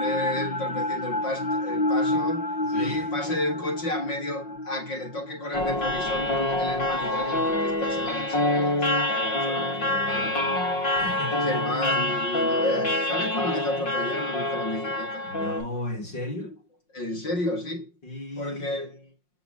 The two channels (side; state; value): right; late; 5.6 ms